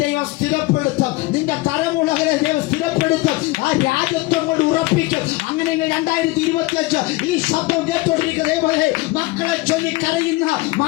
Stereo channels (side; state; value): right; quieter; 21.0 dB